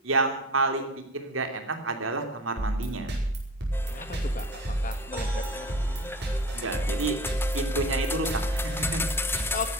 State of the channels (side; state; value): both; normal; correlation 0.37